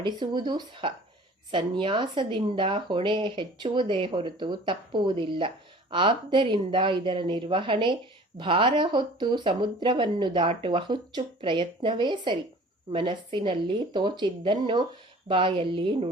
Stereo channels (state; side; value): normal; both; correlation 0.47